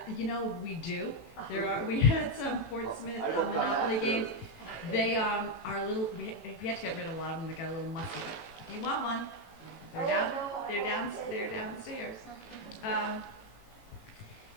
We do. We had some Portsmouth Monopoly games. They are little. We had to get rid of a lot of them. They got a little musty. If you want one, they're downstairs.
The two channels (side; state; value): right; late; 18 ms